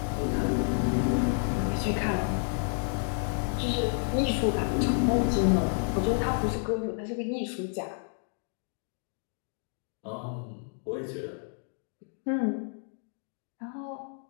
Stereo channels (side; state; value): right; silent; 58 dB below the other